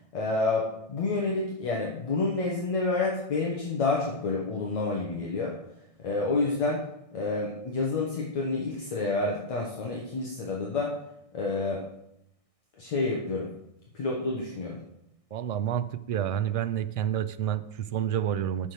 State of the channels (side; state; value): right; late; 1.6 ms